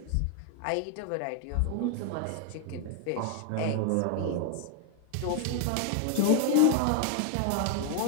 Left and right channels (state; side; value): different; both; correlation 0.00